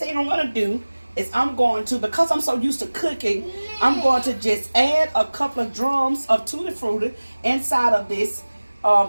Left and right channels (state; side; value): inverted; both; correlation -1.00